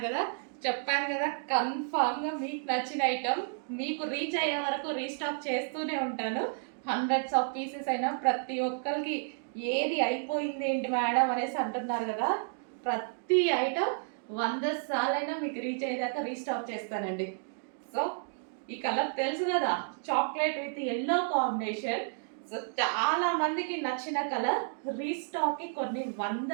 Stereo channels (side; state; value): left; silent; digital silence